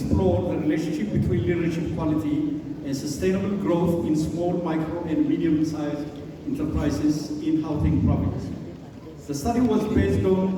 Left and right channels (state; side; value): identical; both; correlation 1.00